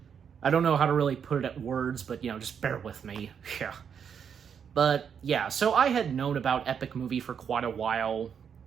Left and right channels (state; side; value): quieter; left; 7.5 dB